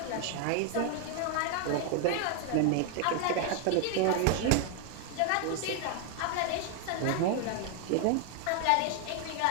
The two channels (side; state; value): both; different; correlation 0.00